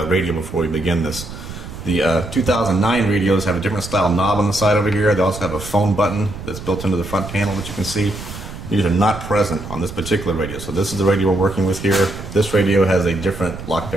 radio before we begin this. The 2009 radios have a different style knob on the side over here. They also have a phone button that's built into the front panel that you can see. These are not present on this particular radio, so this is the radio we're working with here. This radio has a different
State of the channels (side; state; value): right; noise; rumble, 11 dB below the sound